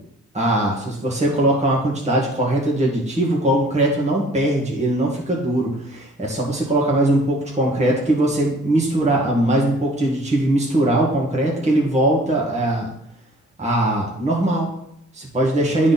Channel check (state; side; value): normal; both; correlation 0.53